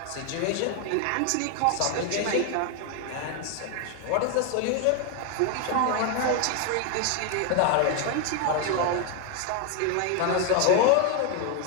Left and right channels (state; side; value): different; both; correlation 0.01